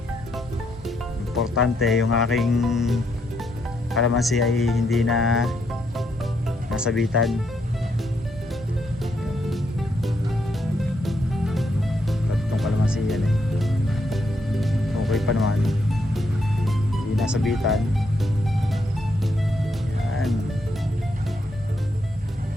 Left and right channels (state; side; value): normal; both; correlation 0.77